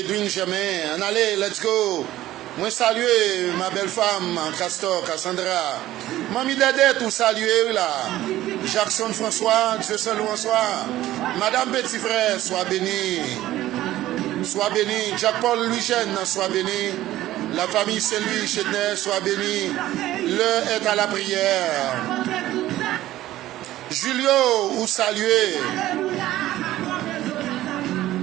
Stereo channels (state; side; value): quieter; left; 14.8 dB